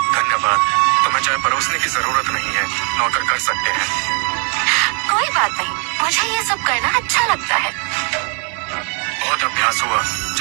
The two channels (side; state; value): left; quieter; 35.4 dB